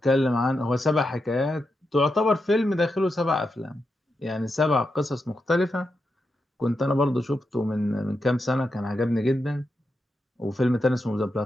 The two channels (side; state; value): both; normal; correlation 0.86